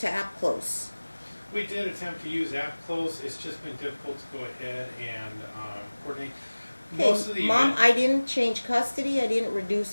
app close? We did attempt to use AppClose. It's just been difficult to go ahead and coordinate. Most of Okay, the Mom, I didn't change custody. I didn't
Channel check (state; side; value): inverted; both; correlation -1.00